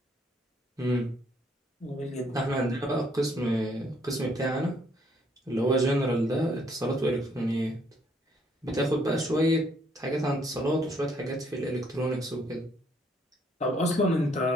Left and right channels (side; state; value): both; normal; correlation 0.67